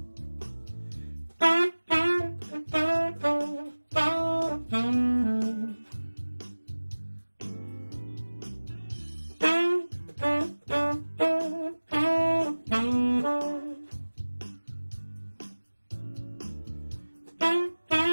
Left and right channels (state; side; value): inverted; both; correlation -1.00